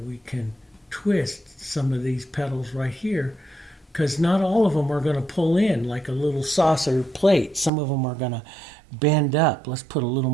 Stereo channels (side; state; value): left; drops out; at 7.7 s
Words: we can twist some of these petals right here, because not all of them are going to pull in like a little saucer plate. Some of them are going to bend up. Let's put a little